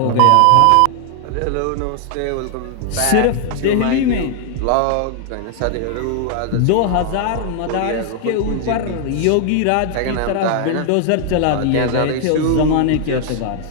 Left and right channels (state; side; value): different; both; correlation 0.00